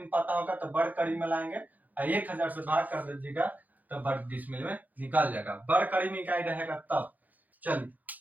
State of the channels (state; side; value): late; left; 0.081 ms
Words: पता होगा तो वर्ग कड़ी में लाएंगे, 1000 से भाग कर दीजिएगा तो वर्ग डिसमिल में निकाल जाएगा। वर्ग कड़ी में इकाई रहेगा तब। चलिए